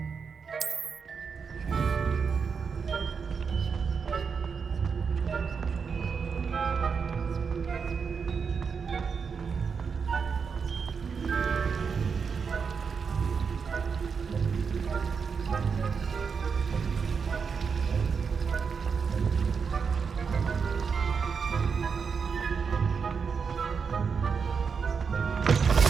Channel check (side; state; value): left; quieter; 5.8 dB